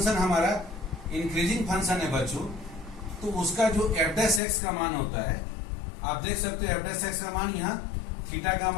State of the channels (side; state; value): right; drops out; at 4.4 s